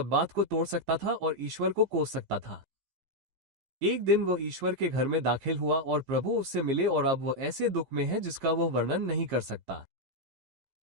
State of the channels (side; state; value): left; late; 15 ms